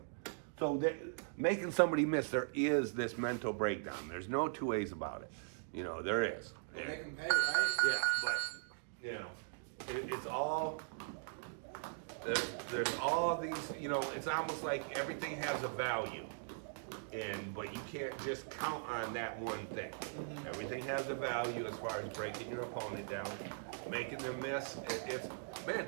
So making somebody miss, there is this mental breakdown. There's no two ways about it. You know, there is. We'll make them pay, right? Yeah, but, you know, it's all... There's all these, you know, it's almost like everything has a value, but you can't just count on that one thing. Mm-hmm. Everything has a value as far as breaking your opponent down, making them miss.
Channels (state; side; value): silent; left; digital silence